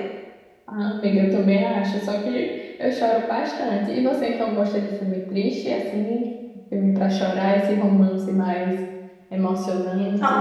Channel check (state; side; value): identical; both; correlation 1.00